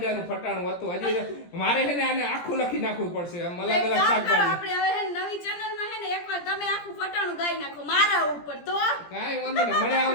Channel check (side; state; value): right; late; 17 ms